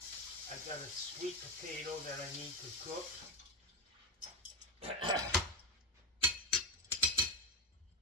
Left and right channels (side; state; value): both; normal; correlation 0.13